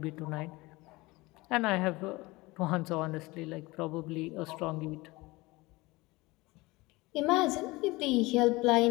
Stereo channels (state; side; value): quieter; right; 22.1 dB